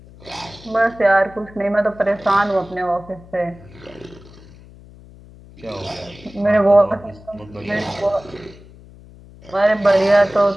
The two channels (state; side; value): noise; left; hum, 21 dB below the sound